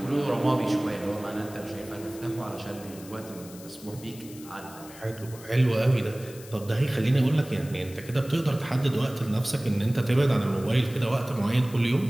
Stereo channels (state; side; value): noise; left; hiss, 18 dB below the sound